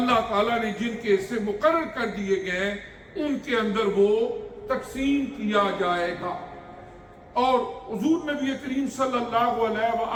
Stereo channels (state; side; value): identical; both; correlation 1.00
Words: تعالیٰ نے جن کے حصے مقرر کر دیے گئے ہیں ان کے اندر وہ تقسیم کیا جائے گا۔ اور حضور نبی کریم صلی اللہ علیہ